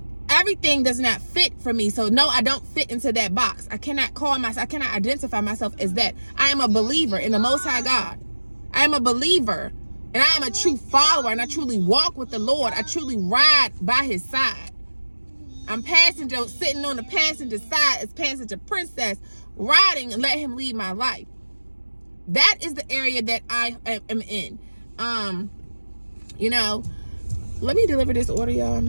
everything does not fit for me. So no, I don't fit into that box. I cannot identify myself as that. I am a believer in the Most High God. I am a believer, and I am a true follower, and I truly walk with the Lord. I truly ride by his side. I'm sitting on the passenger side as passenger princess, riding and let him lead my life. That is the area that I am in. Let me deliver this order, y'all,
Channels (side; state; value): both; inverted; correlation -1.00